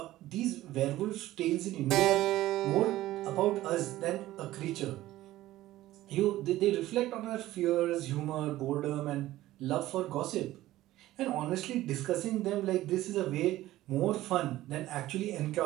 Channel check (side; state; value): left; quieter; 15.6 dB